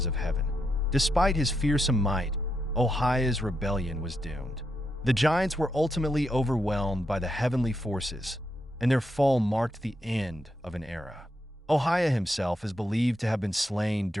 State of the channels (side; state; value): both; normal; correlation 0.82